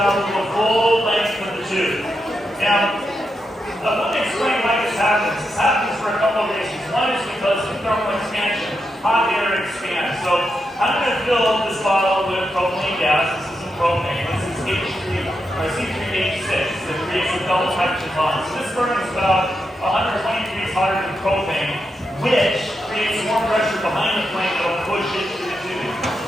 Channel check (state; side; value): normal; both; correlation 0.85